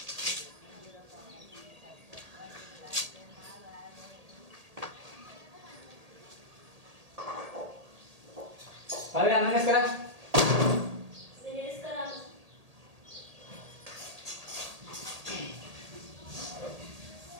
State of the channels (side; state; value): left; late; 1.8 ms